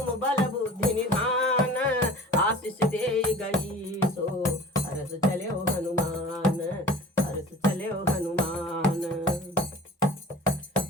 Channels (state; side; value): normal; both; correlation 0.42